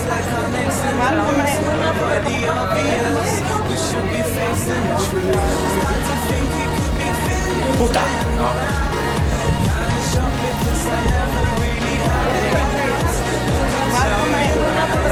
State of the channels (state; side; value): identical; both; correlation 1.00